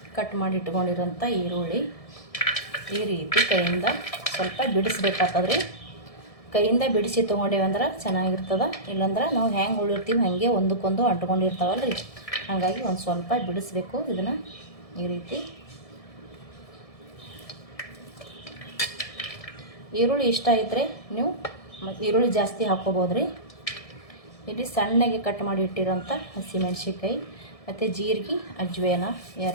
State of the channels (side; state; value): right; late; 1.7 ms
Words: ಕಟ್ ಮಾಡಿ ಇಟ್ಕೊಂಡಿರೋಂಥ ಈರುಳ್ಳಿ ಈ ರೀತಿ ಕೈಯಿಂದ ಸ್ವಲ್ಪ ಬಿಡಿಸ್ಬೇಕಾಗ್ತದ್ರಿ. ಕೈಯಿಂದ ಬಿಡಿಸಿ ತೊಗೊಂಡೇವಂದ್ರೆ ಚೆನ್ನಾಗಿರ್ತದೆ. ಇಲ್ಲಾಂದ್ರೆ ನಾವು ಹೆಂಗೆ ಉಳಿರ್ತೀವಿ ಹಾಗೆ ಒಂದಕ್ಕೊಂದು ಅಂಟ್ಕೊಂಡಿರ್ತಾವಲ್ರಿ. ಹಾಗಾಗಿ ಒಂದು ಸ್ವಲ್ಪ ಬಿಡಿಸ್ಬೇಕು. ಇದನ್ನು ಈ ರೀತಿ ಈರುಳ್ಳಿ ಇಷ್ಟ ಇದ್ದರೆ ನೀವು ಈರುಳ್ಳಿ ಜಾಸ್ತಿ ಹಾಕ್ಕೋಬೋದ್ರಿ. ಇಲ್ಲಿ ಸಣ್ಣಗೆ ಕಟ್ ಮಾಡಿ ಇಟ್ಟಿರೋಂಥ ಹಸಿಮೆಣ್ಸಿನ್ಕಾಯಿ ಮತ್ತು ಜೀರಿಗೆ, ಅಜ್ವೇನ